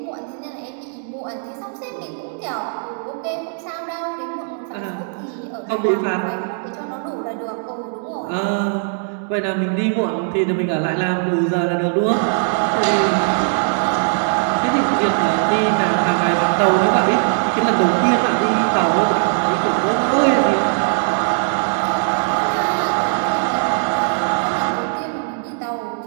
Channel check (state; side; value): silent; left; digital silence